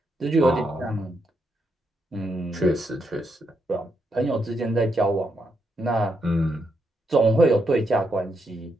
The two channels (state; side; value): normal; both; correlation 0.80